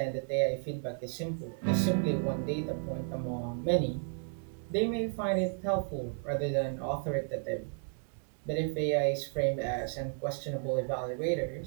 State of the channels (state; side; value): silent; left; 56 dB below the other